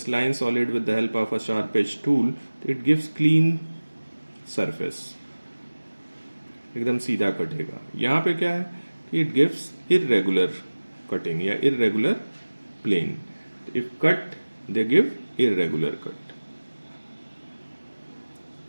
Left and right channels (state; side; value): inverted; both; correlation -1.00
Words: solid with the help of a sharp edge tool, it gives clean surface, एकदम सीधा कटेगा। यहाँ पे क्या है कि it gives irregular cutting या irregular plane। if cut they give irregular cut।